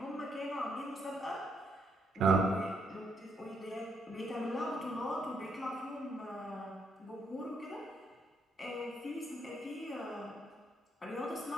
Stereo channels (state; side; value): normal; both; correlation 0.74